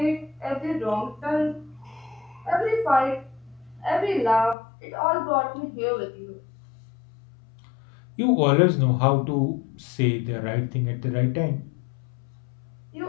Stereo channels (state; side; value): drops out; right; at 4.5 s